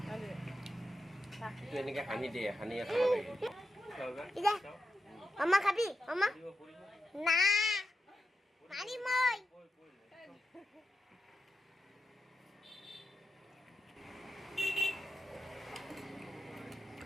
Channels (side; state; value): both; normal; correlation 0.87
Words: না দিবি এইটো এনেকে হানি দে হানি খাব লাগে ইদা মামা খাবি মামা না পানি মই